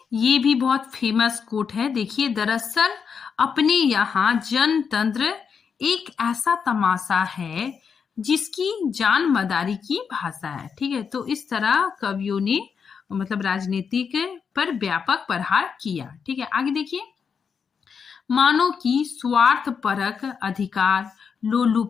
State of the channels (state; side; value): quieter; right; 6.3 dB